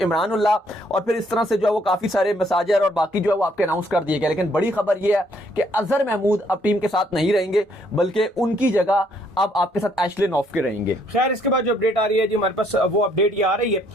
Ullah, और फिर इस तरह से जो है वो काफी सारे मसाजर और बाकी जो है वो आपके अनाउंस कर दिए गए। लेकिन बड़ी खबर ये है कि अजहर महमूद अब टीम के साथ नहीं रहेंगे, बल्कि उनकी जगह अब आपके साथ एशले नोफ्के रहेंगे। खैर इसके बाद जो अपडेट आ रही है जी हमारे पास, वो अपडेट ये आ रही है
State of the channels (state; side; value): normal; both; correlation 0.68